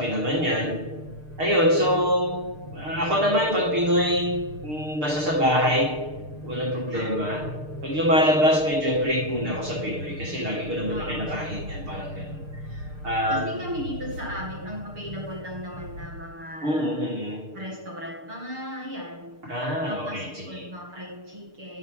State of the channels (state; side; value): late; left; 6.6 ms